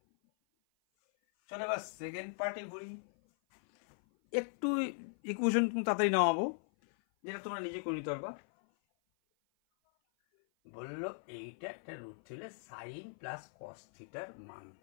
চলো এবার সেকেন্ড পার্টে ঘুরি। একটু ইকুয়েশন তাড়াতাড়ি নামাবো, যেটা তোমরা নিজে করে নিতে পারবা। বললো এইটা একটা রুট ছিল, সাইন প্লাস কস থিটার মান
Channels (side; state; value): right; silent; 52 dB below the other